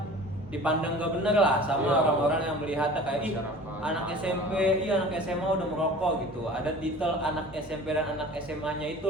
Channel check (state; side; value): normal; both; correlation 0.42